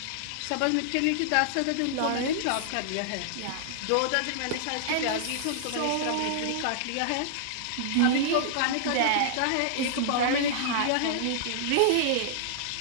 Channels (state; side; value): different; both; correlation -0.01